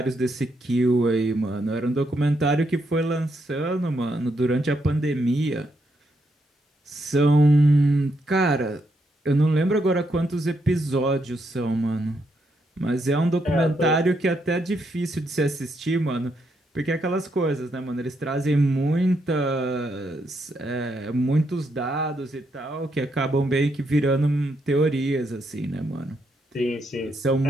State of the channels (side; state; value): both; normal; correlation 0.78